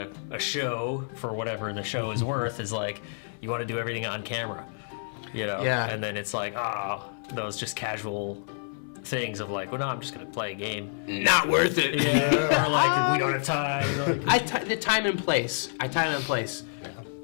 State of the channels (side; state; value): right; silent; 59 dB below the other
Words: show for whatever the show is worth is like you want to do everything on camera, you know. Yeah. And then it's like those just casual things of like, well, no, I'm just gonna play a game. Not worth it. Yeah. Or like we don't have time. Like, The time and place.